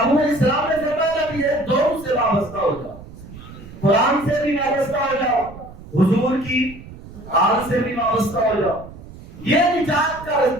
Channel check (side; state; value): right; noise; rumble, 16 dB below the sound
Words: اسلام نے فرمایا بھی ہے، دونوں سے وابستہ ہو جاؤ، قرآن سے بھی وابستہ ہو جاؤ، حضور کی آل سے بھی وابستہ ہو جاؤ۔ یہ نجات کا